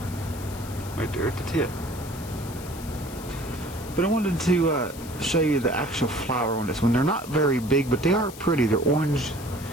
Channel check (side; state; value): left; noise; hiss, 16 dB below the sound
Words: at the tip. But I wanted to show you the actual flower on this one. They're not very big, but they are pretty. They're orange